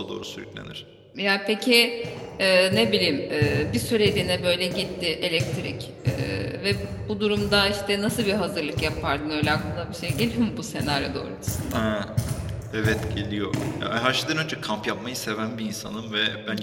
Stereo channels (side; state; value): both; identical; correlation 1.00